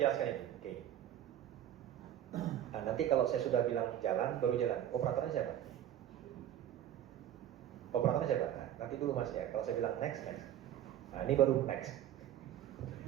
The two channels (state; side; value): quieter; left; 11.1 dB